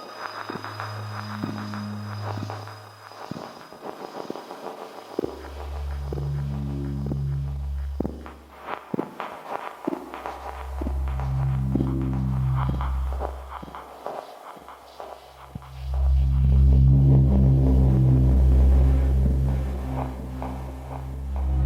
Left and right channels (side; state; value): both; identical; correlation 1.00